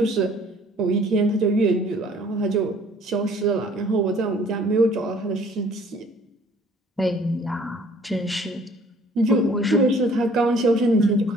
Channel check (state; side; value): normal; both; correlation 0.56